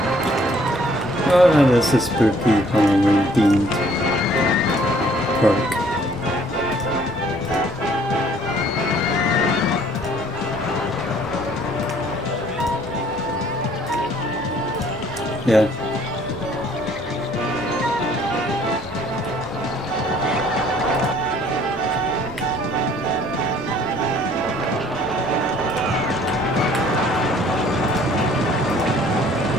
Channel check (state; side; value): normal; both; correlation 0.59